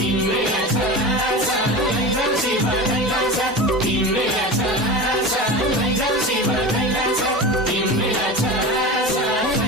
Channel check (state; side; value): normal; both; correlation 0.28